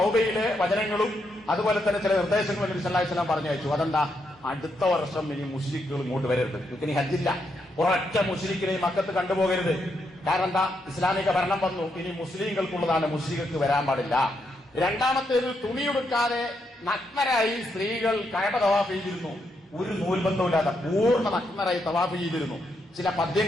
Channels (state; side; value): normal; both; correlation 0.80